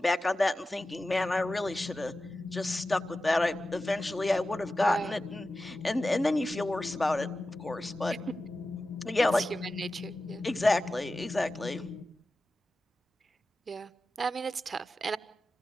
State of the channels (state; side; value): normal; both; correlation 0.93